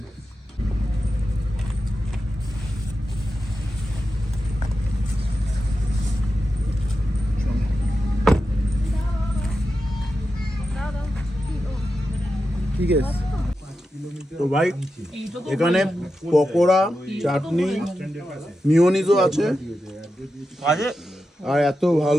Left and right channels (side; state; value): both; normal; correlation 0.90